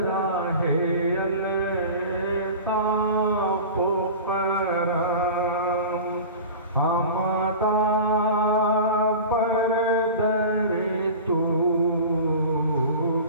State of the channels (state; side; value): inverted; both; correlation -0.35